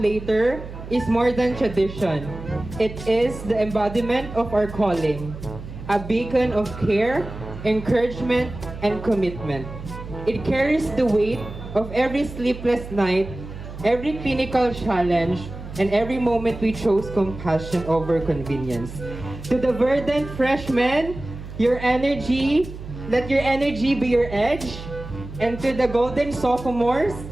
is more than tradition. It is the embodiment of our calling, a beacon of care, encouragement, and commitment. It carries the weight of every sleepless night, every clinical challenge, and every moment we chose compassion over convenience. To the verdant freshmen, your energy, let your energy be your edge. And to the golden sophomores,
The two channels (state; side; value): noise; right; hum, 12 dB below the sound